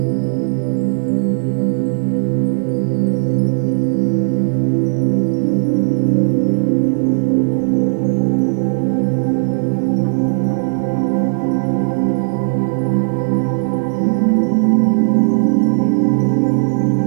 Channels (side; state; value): left; silent; digital silence